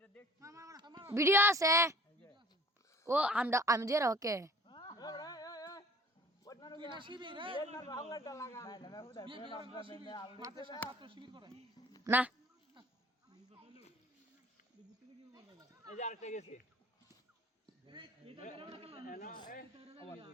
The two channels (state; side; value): normal; both; correlation 0.49